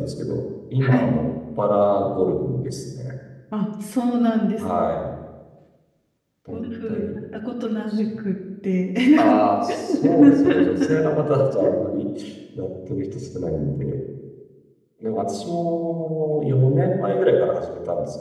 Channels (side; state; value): both; identical; correlation 1.00